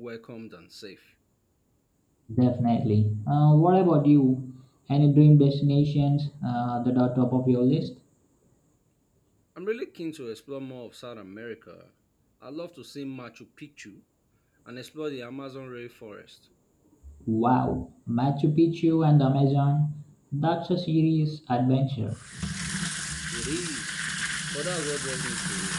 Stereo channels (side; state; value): both; identical; correlation 1.00